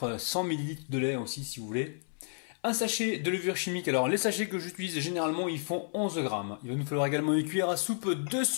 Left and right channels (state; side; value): silent; right; 56 dB below the other